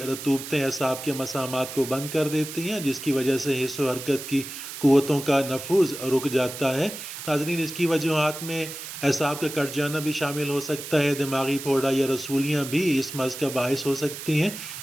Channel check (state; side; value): noise; right; hiss, 10 dB below the sound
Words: رطوبتیں اعصاب کے مسامات کو بند کر دیتی ہیں، جس کی وجہ سے حس و حرکت کی قوتوں کا نفوذ رک جاتا ہے۔ ناظرین، اس کی وجوہات میں اعصاب کا کٹ جانا بھی شامل ہو سکتا ہے، دماغی پھوڑا یا رسولیاں بھی اس مرض کا باعث ہو سکتی ہیں،